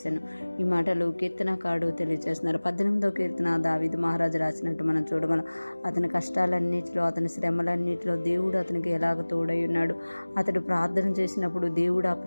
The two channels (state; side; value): inverted; both; correlation -1.00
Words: ఈ మాటలు కీర్తనకారుడు తెలియజేస్తున్నారు. 18వ కీర్తన దావీదు మహారాజు రాసినట్టు మనం చూడగలం. అతని కష్టాలన్నిటిలో, అతని శ్రమలన్నిటిలో దేవుడు అతనికి ఎలాగ తోడై ఉన్నాడు. అతడు ప్రార్థన చేసినప్పుడు దేవుడు ఆ